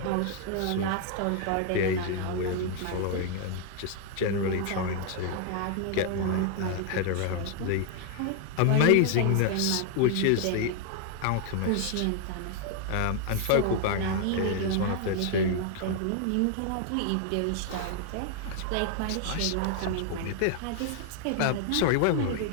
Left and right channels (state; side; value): different; both; correlation 0.00